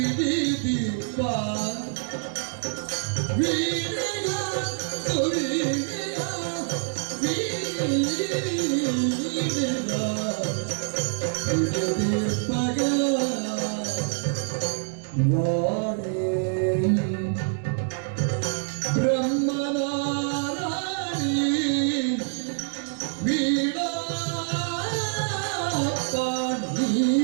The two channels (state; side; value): silent; left; digital silence